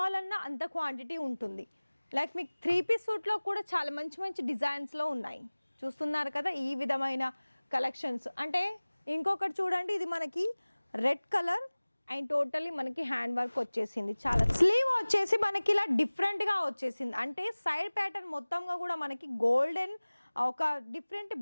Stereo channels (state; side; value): inverted; both; correlation -1.00